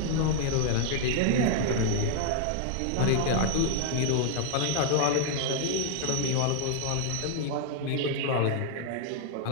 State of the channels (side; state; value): both; different; correlation 0.00